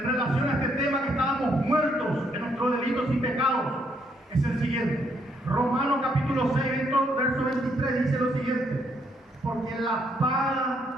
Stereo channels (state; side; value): normal; both; correlation 0.72